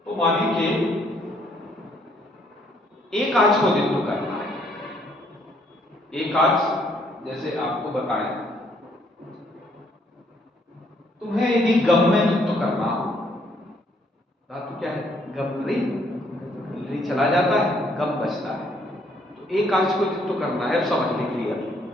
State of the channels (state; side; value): normal; both; correlation 0.68